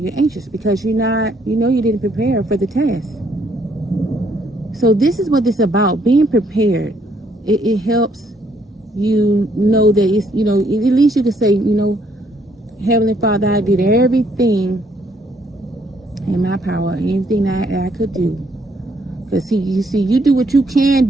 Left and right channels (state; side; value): normal; both; correlation 0.69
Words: anxious because you didn't prepare for the test. So this is what this is about, being prepared. It helps you know that it's, at least you can say, Heavenly Father, I did everything in my power, anything that I could do. Because you do what you can